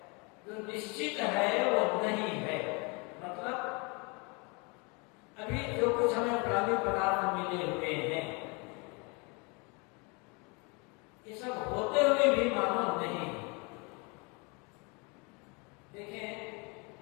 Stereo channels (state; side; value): quieter; right; 30.5 dB